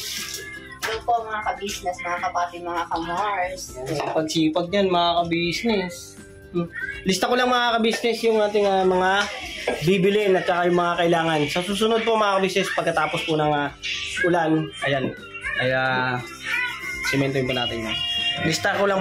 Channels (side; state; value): both; identical; correlation 1.00